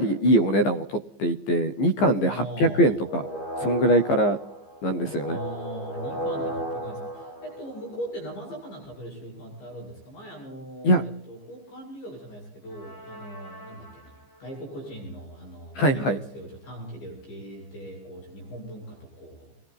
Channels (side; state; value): right; late; 15 ms